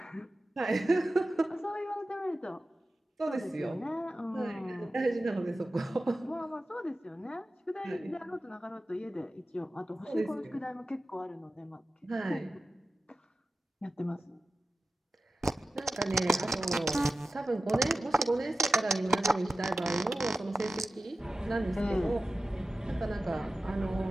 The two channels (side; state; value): both; normal; correlation 0.94